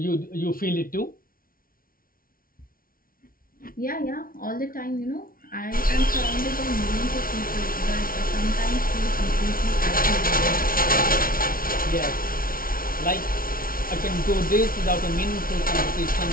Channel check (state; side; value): late; right; 0.42 ms